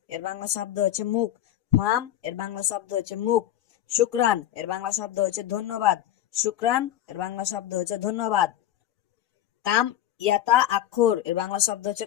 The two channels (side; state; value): right; quieter; 12.3 dB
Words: এর বাংলা শব্দ হচ্ছে মুখ। ফাম এর বাংলা শব্দ হচ্ছে মুখ। শুক্রান এর বাংলা শব্দ হচ্ছে ধন্যবাদ। শুক্রান এর বাংলা শব্দ হচ্ছে ধন্যবাদ। কাম ইয়াতা আক্ষর এর বাংলা শব্দ হচ্ছে